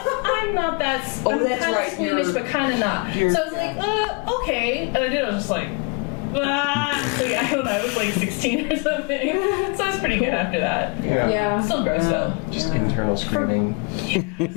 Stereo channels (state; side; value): quieter; right; 32.6 dB